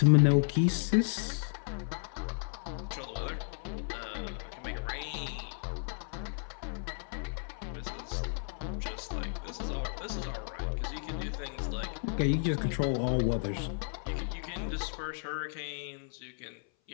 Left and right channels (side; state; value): right; silent; 55 dB below the other